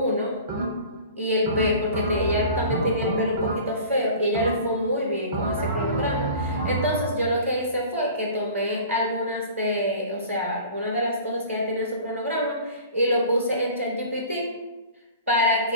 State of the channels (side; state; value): both; inverted; correlation -0.42